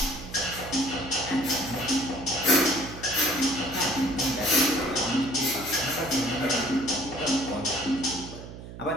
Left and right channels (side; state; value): right; noise; hum, 13 dB below the sound